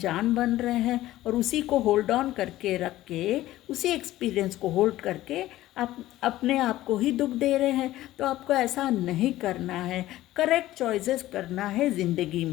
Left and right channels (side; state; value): right; quieter; 15.4 dB